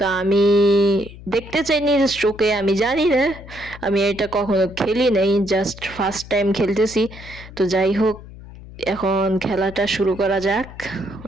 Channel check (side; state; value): left; noise; hum, 17 dB below the sound